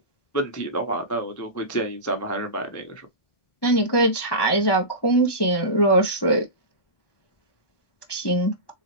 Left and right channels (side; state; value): right; late; 1.2 ms